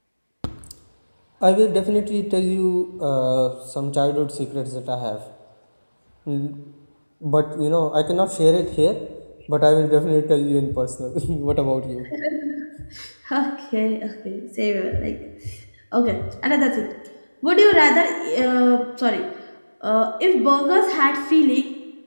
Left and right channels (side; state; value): both; inverted; correlation -1.00